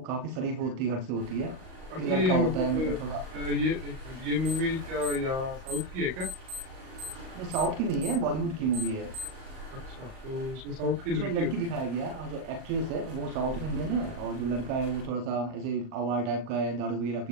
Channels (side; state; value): left; late; 38 ms